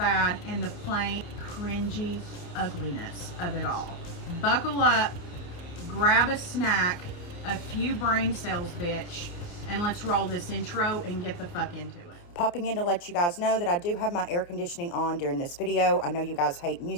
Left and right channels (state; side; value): late; right; 29 ms